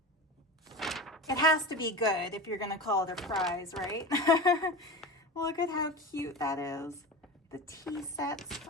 It has to be good if you're going to call it a prize, right? Look at how cute that is. The tea sets.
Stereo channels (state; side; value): normal; both; correlation 0.28